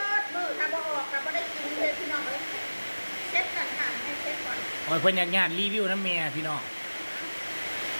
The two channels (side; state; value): both; inverted; correlation -1.00